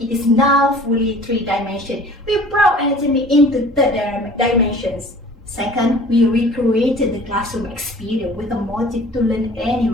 it is now fully 3-dimensional. We brought anatomy into 3 dimensions. Second, we recreated the classroom experience with a motive to learn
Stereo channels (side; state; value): both; normal; correlation 0.47